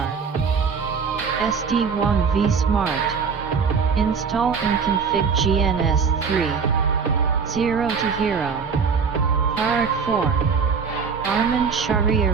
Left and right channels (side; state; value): left; quieter; 5.7 dB